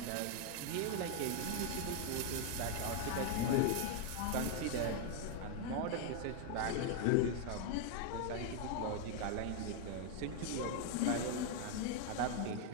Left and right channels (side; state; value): both; different; correlation 0.00